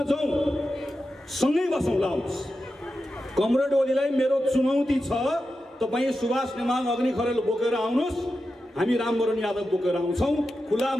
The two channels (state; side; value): normal; both; correlation 0.90